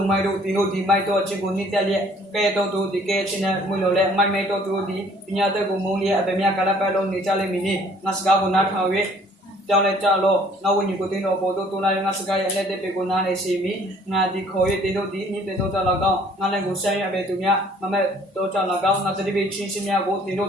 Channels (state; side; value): normal; both; correlation 0.57